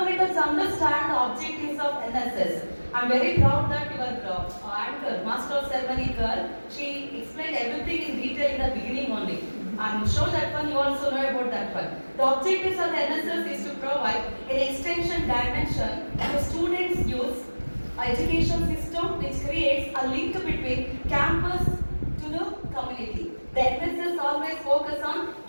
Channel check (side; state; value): both; inverted; correlation -1.00